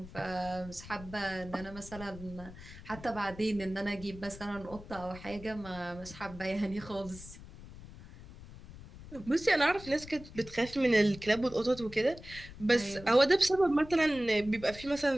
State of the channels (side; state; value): left; noise; rumble, 16 dB below the sound